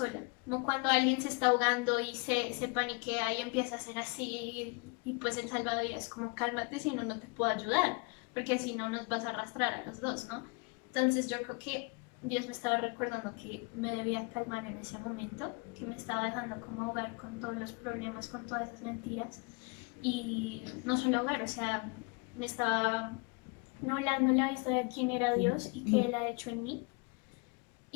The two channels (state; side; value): quieter; right; 31.7 dB